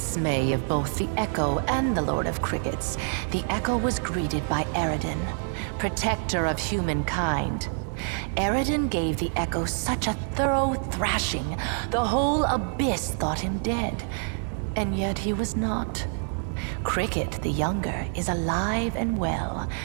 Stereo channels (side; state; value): left; silent; 60 dB below the other